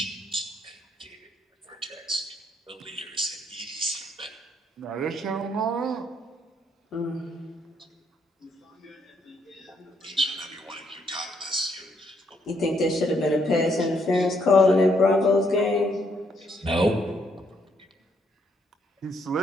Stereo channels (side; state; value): both; normal; correlation 0.72